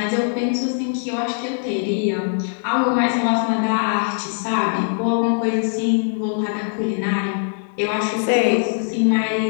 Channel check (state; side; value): silent; right; digital silence